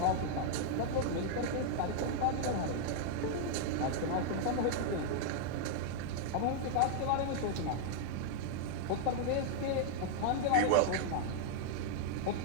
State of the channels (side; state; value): both; different; correlation -0.01